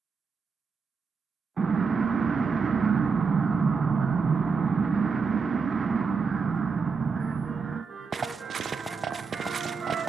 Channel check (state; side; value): quieter; left; 5.2 dB